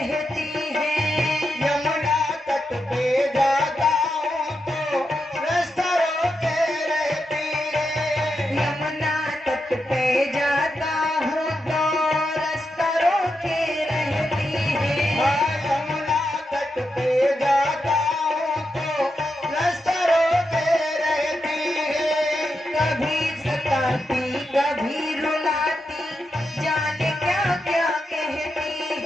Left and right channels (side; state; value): both; normal; correlation 0.86